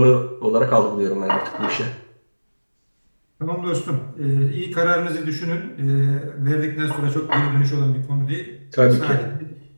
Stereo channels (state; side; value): inverted; both; correlation -1.00